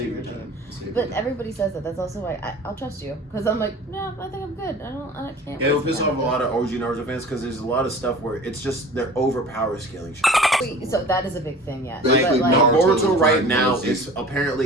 dream. But everybody says that. That's also why I'll trust you, because I'm like, no, I think I'm good. I can't. It'll waste piss time off a with lot of OG Naruto fans because there's a lot of stuff where it's just they're overpower scaling shit. Wait, so that is a big thing, yes. Basically, But like, Naruto Boruto is right Dragon now Ball Z. is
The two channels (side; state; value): both; normal; correlation 0.42